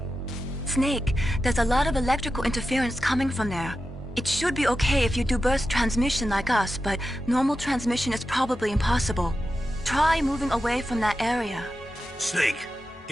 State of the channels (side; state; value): both; normal; correlation 0.91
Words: Snake, there's a lot of electrical interference coming from there. It should be okay if you do burst transmission like us, but normal transmission is probably impossible. Try moving away from that area. Snake,